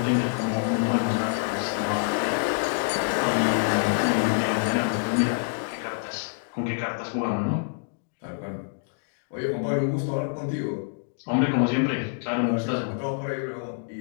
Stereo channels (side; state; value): right; silent; digital silence